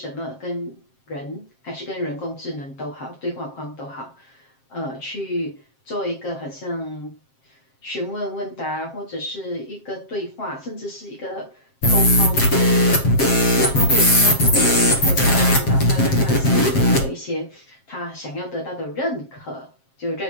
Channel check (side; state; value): right; late; 7.5 ms